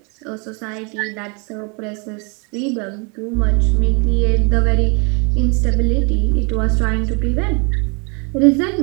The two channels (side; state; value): left; quieter; 33.3 dB